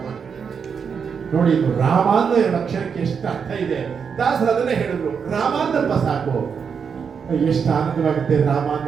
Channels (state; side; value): quieter; left; 6.4 dB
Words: ನೋಡಿ, ಇದು ರಾಮ ಅನ್ನೋ ಎರಡು ಅಕ್ಷರಕ್ಕೆ ಎಷ್ಟು ಅರ್ಥ ಇದೆ. ದಾಸರು ಅದನ್ನೇ ಹೇಳಿದ್ರು, ರಾಮ ಅನ್ನಪ್ಪ ಸಾಕು. ಎಷ್ಟು ಆನಂದವಾಗುತ್ತೆ ರಾಮ